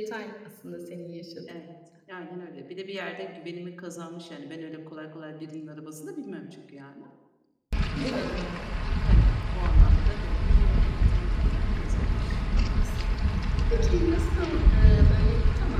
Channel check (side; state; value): both; identical; correlation 1.00